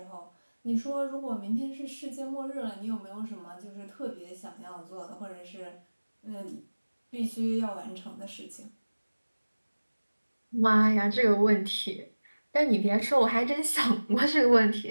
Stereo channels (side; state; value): both; inverted; correlation -1.00